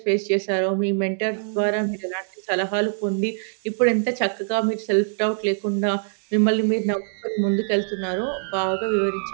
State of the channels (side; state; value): left; silent; digital silence